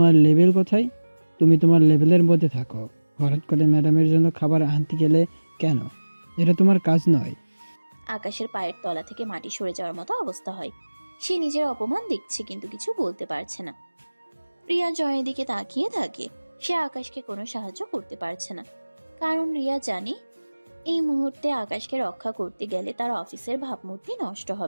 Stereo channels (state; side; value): inverted; both; correlation -1.00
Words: লেভেল কোথায়? তুমি তোমার লেভেলের মধ্যে থাকো। হঠাৎ করে ম্যাডামের জন্য খাবার আনতে গেলে কেন? এটা তোমার কাজ নয়। আকাশের পায়ের তলা থেকে মাটি সরে যাওয়ার মতো অবস্থা হয়। সে নিজের অপমান দেখছে কিন্তু কিছু বলতে পারছে না। রিয়া জয়ের দিকে তাকিয়ে থাকে। সে আকাশকে কোনো সাহায্য করতে পারছে না, কারণ রিয়া জানে এই মুহূর্তে আকাশকে রক্ষা করতে গেলে তার অফিসের ভাবমূর্তি নষ্ট